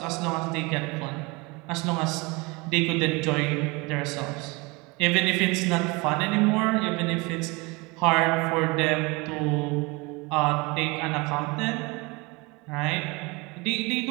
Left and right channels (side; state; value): left; quieter; 26.1 dB